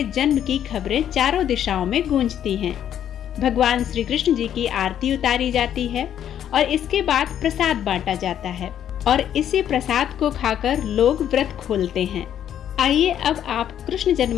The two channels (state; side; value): quieter; right; 10.1 dB